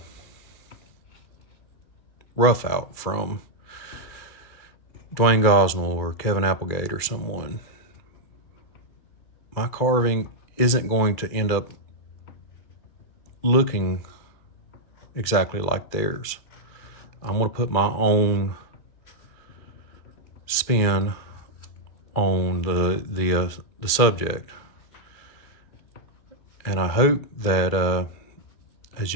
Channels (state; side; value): late; right; 2.4 ms